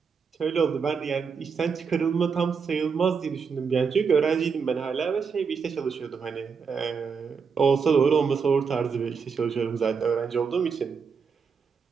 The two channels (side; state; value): left; quieter; 5.8 dB